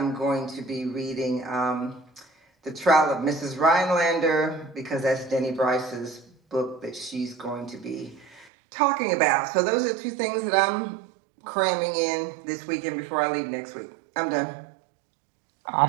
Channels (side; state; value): left; drops out; at 8.5 s